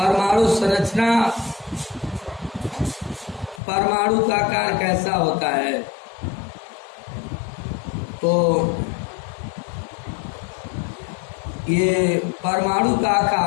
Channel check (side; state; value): right; drops out; at 3.6 s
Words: संरचना, परमाणु का आकार कैसा होता है? तो ये परमाणु का